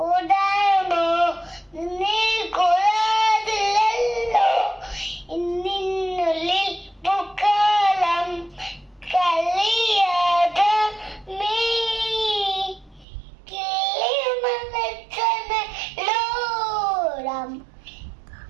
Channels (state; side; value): drops out; left; at 13.1 s